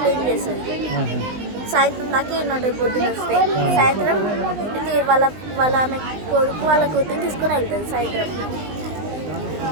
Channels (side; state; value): left; late; 20 ms